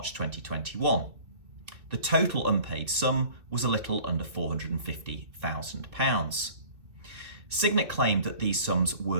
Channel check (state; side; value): late; left; 2.7 ms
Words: 2021. The total unpaid sum was a little under £450,000. Signet claimed that these sums